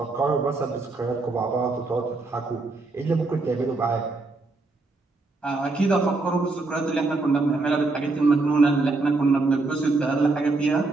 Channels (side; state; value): left; quieter; 3.5 dB